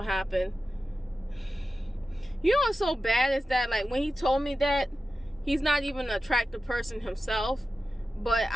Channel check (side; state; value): both; normal; correlation 0.93